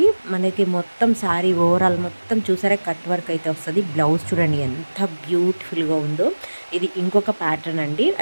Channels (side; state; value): both; inverted; correlation -1.00